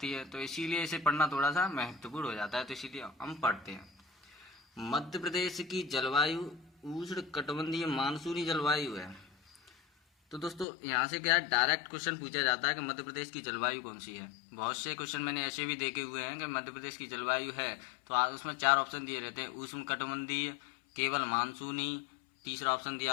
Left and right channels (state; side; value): drops out; right; at 10.7 s